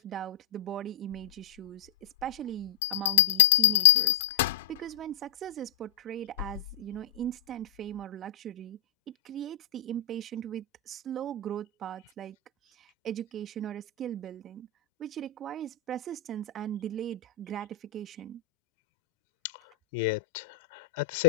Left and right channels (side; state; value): right; quieter; 7.6 dB